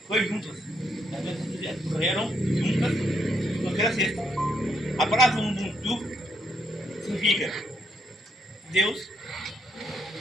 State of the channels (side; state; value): both; normal; correlation 0.75